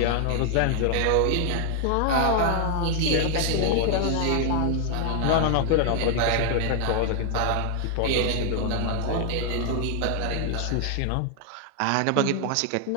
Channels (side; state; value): both; different; correlation 0.00